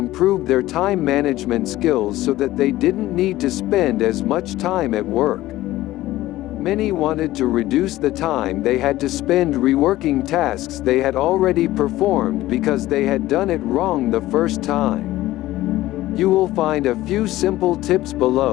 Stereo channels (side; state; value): right; quieter; 16.1 dB